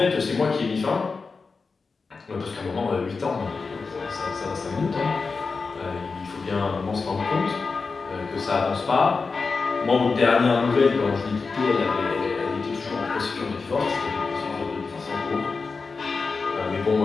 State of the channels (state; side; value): quieter; right; 4.5 dB